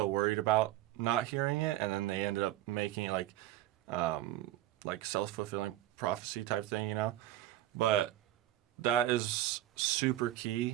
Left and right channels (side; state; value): left; quieter; 14.3 dB